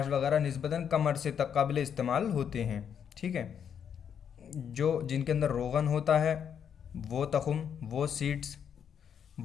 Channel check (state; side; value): quieter; right; 8.0 dB